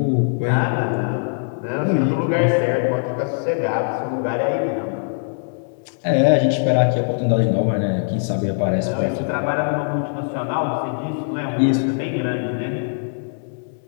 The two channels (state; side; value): silent; right; 65 dB below the other